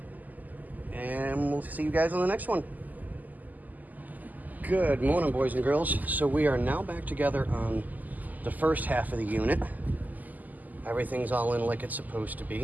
And we'll see you guys on the next one. Good morning, boys and girls. So we are now back together on the first half of the unit. Everything's all in like it's supposed to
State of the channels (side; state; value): left; late; 0.081 ms